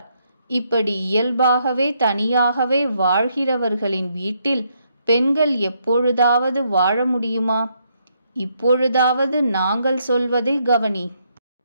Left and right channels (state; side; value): inverted; both; correlation -0.75